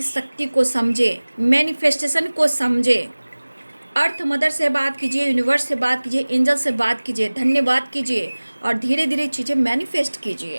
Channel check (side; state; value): both; inverted; correlation -1.00